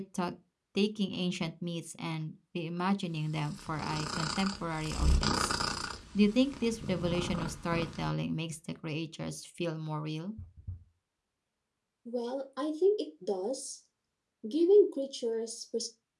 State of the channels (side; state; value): both; identical; correlation 1.00